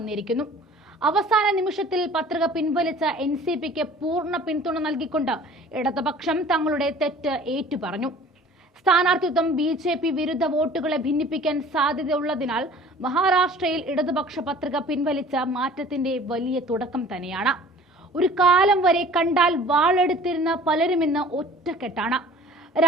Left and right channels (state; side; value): normal; both; correlation 0.48